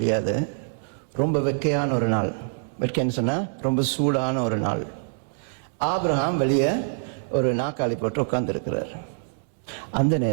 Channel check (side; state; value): left; silent; digital silence